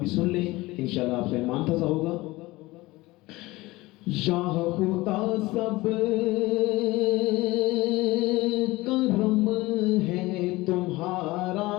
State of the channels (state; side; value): quieter; right; 20.2 dB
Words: سن لیں، انشاءاللہ آپ کا ایمان تازہ ہوگا۔ یا خدا سب کرم ہے تمہارا،